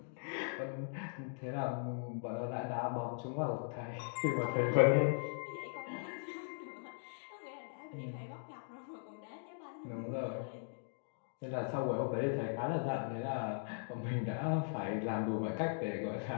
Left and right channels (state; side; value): silent; right; digital silence